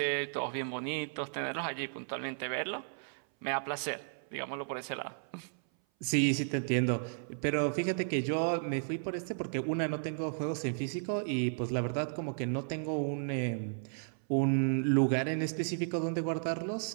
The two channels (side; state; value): left; silent; 55 dB below the other